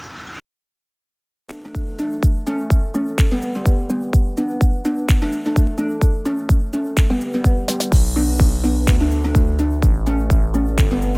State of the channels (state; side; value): identical; both; correlation 1.00